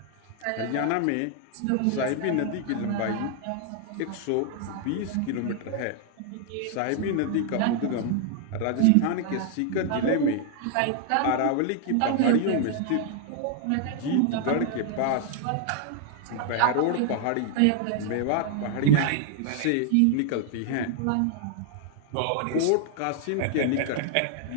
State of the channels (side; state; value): both; different; correlation 0.00